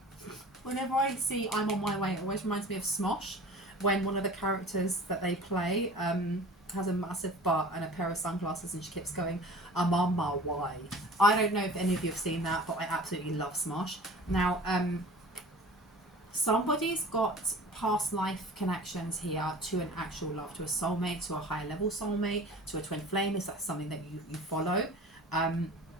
Whenever I see I'm on my way, it always reminds me of Smosh, when one of the characters that they play has a massive butt and a pair of sunglasses and she keeps going, I'm on my way. I don't know if any of you have seen that, but I absolutely love Smosh. Now, somebody's got past life connections here to an actual love, to a soulmate, to a higher level soulmate, to a twin flame, if that's something that you follow. And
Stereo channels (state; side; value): normal; both; correlation 0.42